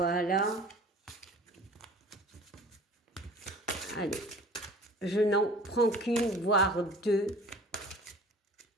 Allez, je n'en prends qu'une, voire deux.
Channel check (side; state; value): both; normal; correlation 0.45